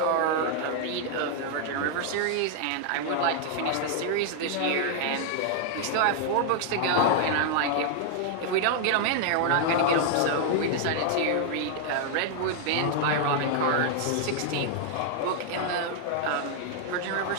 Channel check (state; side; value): different; both; correlation 0.00